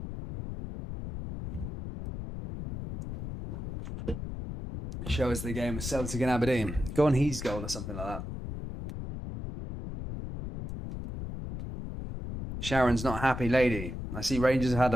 Show us the game of Celtic and Aberdeen. Go on his goal or something like that. Sharon's not happy lady. I see Rangers have had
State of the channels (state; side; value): noise; left; rumble, 7 dB below the sound